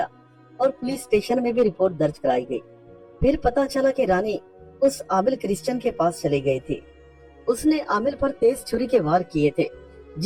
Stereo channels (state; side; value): identical; both; correlation 1.00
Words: और पुलिस स्टेशन में भी रिपोर्ट दर्ज कराई गई। फिर पता चला कि रानी उस आमिल क्रिश्चियन के पास चली गई थी। उसने आमिल पर तेज छुरी के वार किए थे,